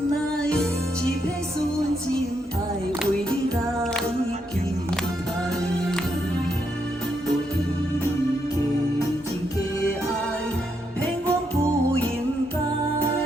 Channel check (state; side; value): normal; both; correlation 0.79